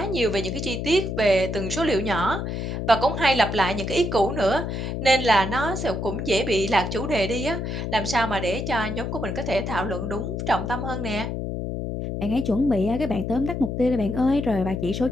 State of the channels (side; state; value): left; noise; hum, 4 dB below the sound